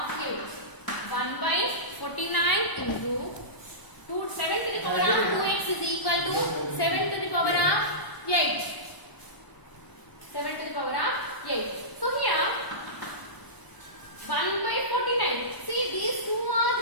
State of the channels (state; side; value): late; right; 1.0 ms